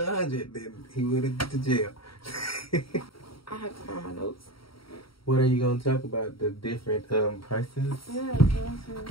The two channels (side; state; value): right; late; 0.74 ms